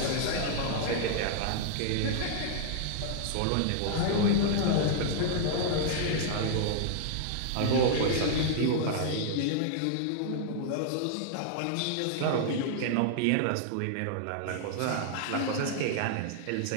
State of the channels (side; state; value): both; different; correlation -0.01